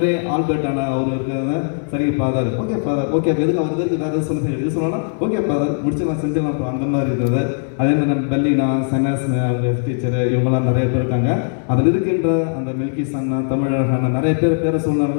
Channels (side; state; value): right; silent; 67 dB below the other